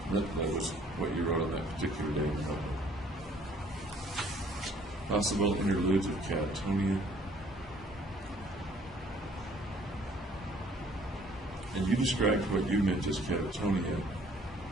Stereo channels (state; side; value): normal; both; correlation 0.59